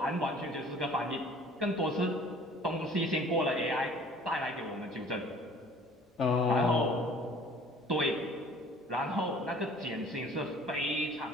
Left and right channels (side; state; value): both; normal; correlation 0.51